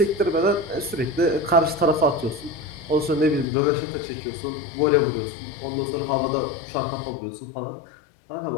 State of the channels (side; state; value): right; drops out; at 3.5 s